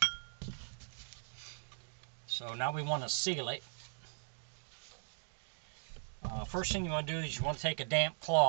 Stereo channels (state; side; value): silent; left; digital silence